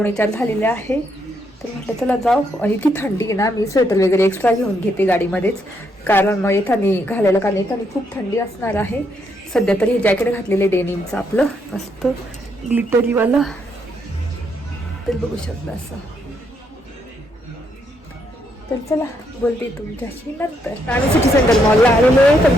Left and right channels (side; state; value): both; normal; correlation 0.76